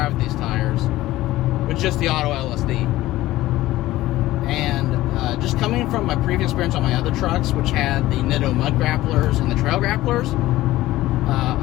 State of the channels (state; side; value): quieter; right; 16.3 dB